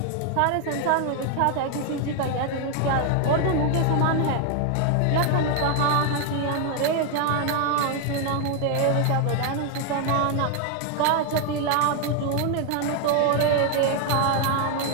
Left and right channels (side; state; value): both; different; correlation 0.01